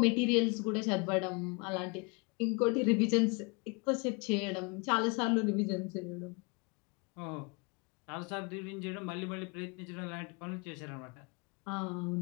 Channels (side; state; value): right; quieter; 31.3 dB